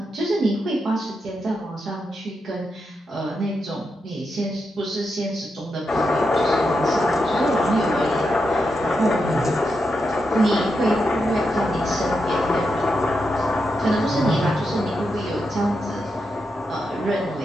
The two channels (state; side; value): normal; both; correlation 0.85